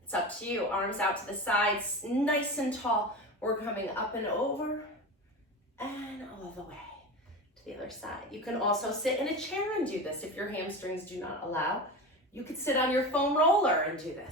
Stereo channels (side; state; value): both; normal; correlation 0.27